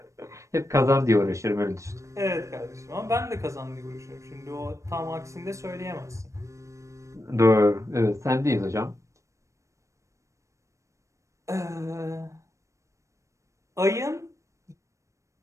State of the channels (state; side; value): late; left; 0.15 ms